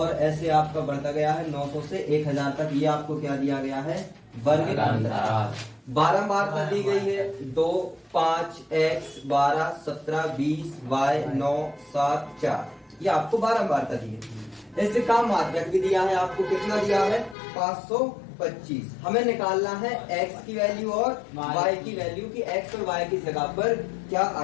ऐसे आपका बढ़ता गया है 900 से 1000 तक। ये आपको क्या दिया गया है, वर्ग अंतराल। बारंबारता दी गई है 2, 5, x, 12, 17, 20, y, 9, 7, 4। ये आपको बारंबारता दी है। इससे काम माध्यक भी दिया है आपको, कितना दिया है, 525। हमें निकालना है x की वैल्यू और y की वैल्यू की x और y की जगह पर क्या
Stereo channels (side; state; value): right; drops out; at 17.4 s